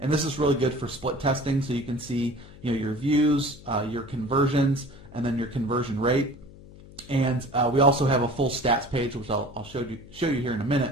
and this is really good for split testing, so you can see your views, your conversions, and then your conversion rate. And we also have a full stats page, which I'll show you here in a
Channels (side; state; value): left; noise; hum, 19 dB below the sound